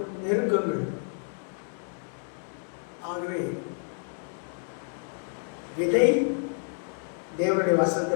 நெருக்கங்கள். ஆகவே விதை தேவனுடைய வசனத்தை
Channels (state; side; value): silent; right; 58 dB below the other